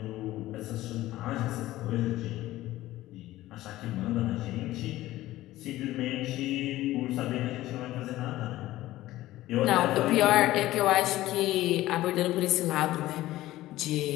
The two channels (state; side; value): quieter; right; 16.0 dB